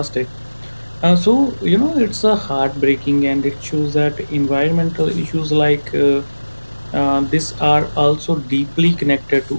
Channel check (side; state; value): both; inverted; correlation -1.00